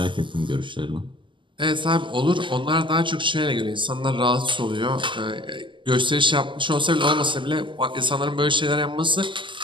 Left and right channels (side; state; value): left; late; 0.24 ms